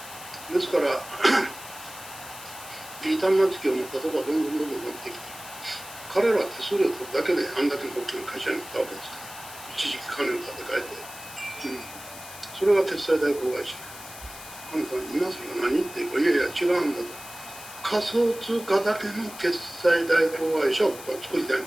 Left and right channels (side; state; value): left; noise; hiss, 14 dB below the sound